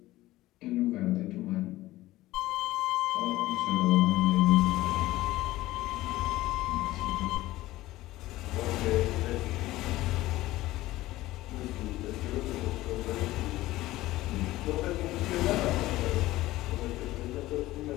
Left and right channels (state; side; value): quieter; right; 17.0 dB